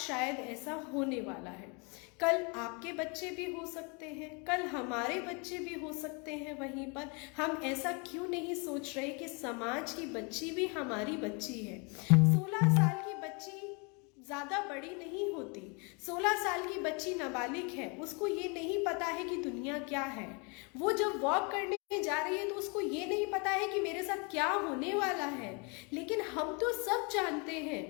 ऐसा होने वाला है। कल आपके बच्चे भी हो सकते हैं, कल हमारे बच्चे भी हो सकते हैं। वहीं पर हम ऐसा क्यों नहीं सोच रहे कि समाज की बच्ची भी हमारी बच्ची है। 16 साल की बच्ची ज्यादा बड़ी नहीं होती। 16 साल की बच्ची नाबालिग है, उसको ये नहीं पता है कि दुनिया क्या है। वो जब वॉक करने जा रही है तो उसको ये नहीं पता है कि मेरे साथ क्या होने वाला है। लेकिन हम तो सब जानते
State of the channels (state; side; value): quieter; right; 32.7 dB